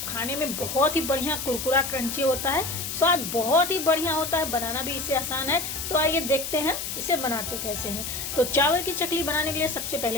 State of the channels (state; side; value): noise; left; hiss, 5 dB below the sound